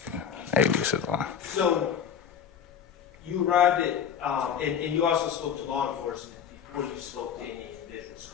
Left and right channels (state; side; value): quieter; right; 7.9 dB